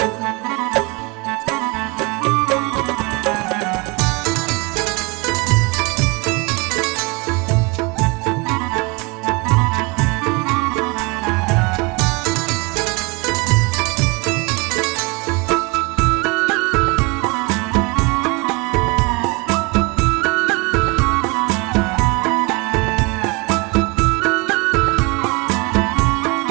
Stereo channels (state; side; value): quieter; left; 27.6 dB